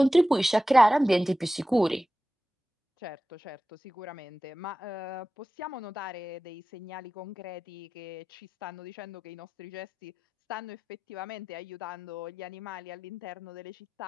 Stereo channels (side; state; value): both; normal; correlation 0.94